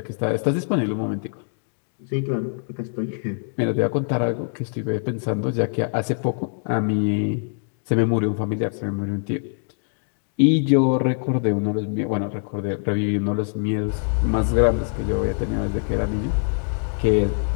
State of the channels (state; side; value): silent; right; 63 dB below the other